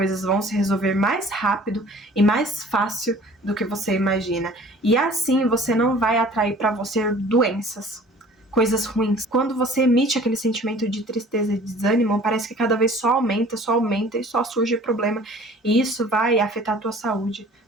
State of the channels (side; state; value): both; normal; correlation 0.49